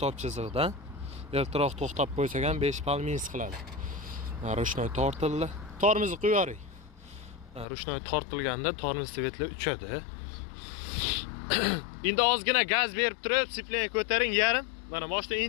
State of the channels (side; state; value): right; drops out; at 7.7 s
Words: chizig'idan. Ertaroq to'xtab qo'ysak ham 5 pal minus qiladi. Rushnoy tortildi. Tormozni qo'yaring. Rushnoy tortilganda tormoz svetlar uchadi. Endi ozgina gaz berib turib, sipleni ko'taring yarim. Mana mashina